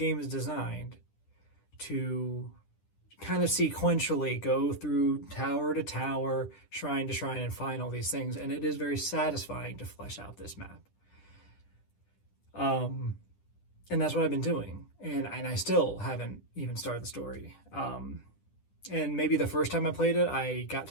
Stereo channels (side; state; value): right; late; 10 ms